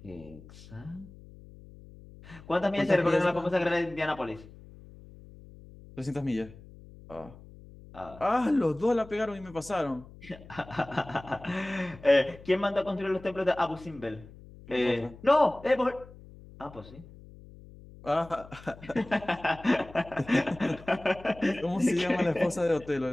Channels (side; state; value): left; noise; hum, 19 dB below the sound